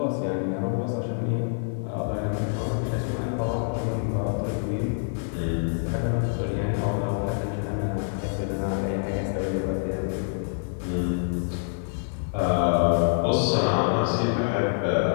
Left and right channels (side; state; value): right; silent; digital silence